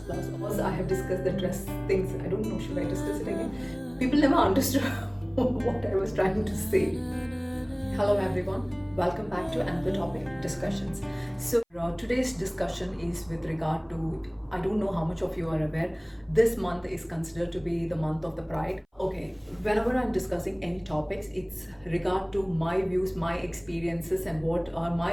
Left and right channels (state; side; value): identical; both; correlation 1.00